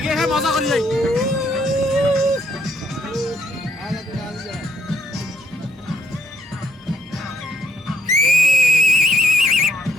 মজা করি যাই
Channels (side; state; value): both; normal; correlation 0.74